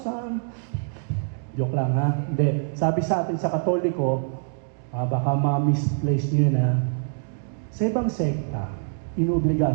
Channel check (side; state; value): left; silent; digital silence